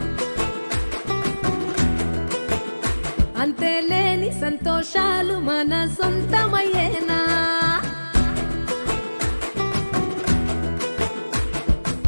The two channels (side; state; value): both; inverted; correlation -1.00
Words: అంతేలేని సంతోషాలు మన సొంతమయ్యేనా